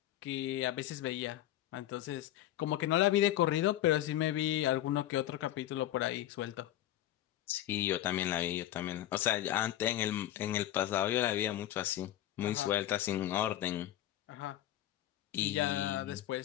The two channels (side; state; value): right; quieter; 13.2 dB